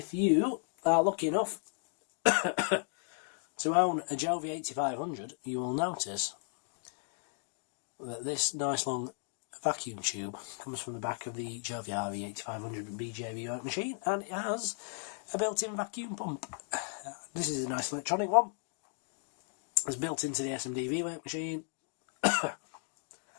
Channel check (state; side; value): silent; right; 54 dB below the other